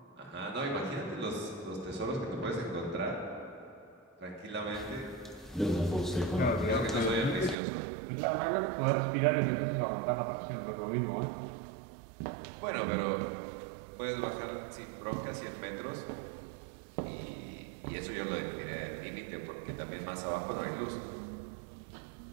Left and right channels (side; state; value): left; drops out; at 7.6 s